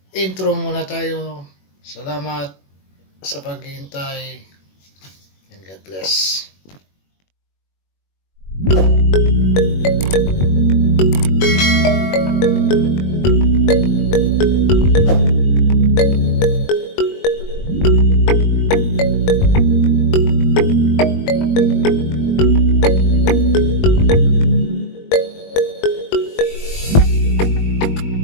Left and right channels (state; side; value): late; right; 21 ms